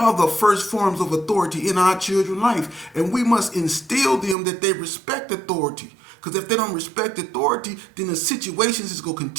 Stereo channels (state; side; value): drops out; left; at 4.4 s